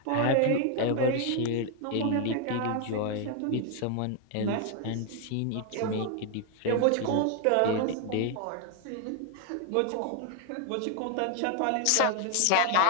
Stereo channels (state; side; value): different; both; correlation 0.00